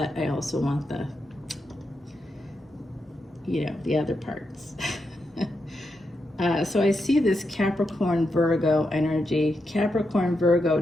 I also want the, you know, the other parts. So I see this Capricorn Virgo energy, Capricorn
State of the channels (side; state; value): both; normal; correlation 0.85